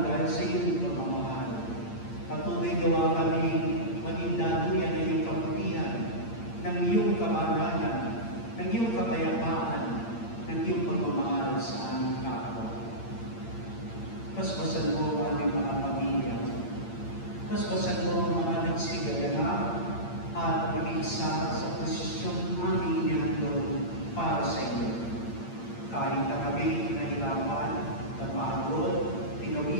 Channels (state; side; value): late; right; 8.7 ms